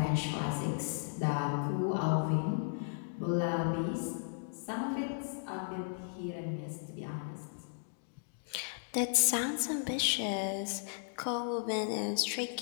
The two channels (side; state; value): right; silent; digital silence